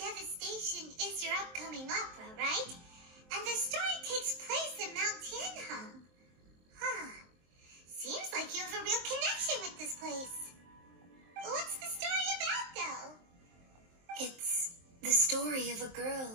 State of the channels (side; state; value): left; late; 23 ms